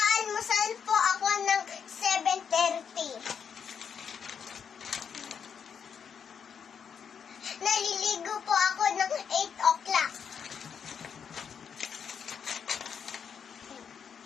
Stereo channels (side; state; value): right; quieter; 7.1 dB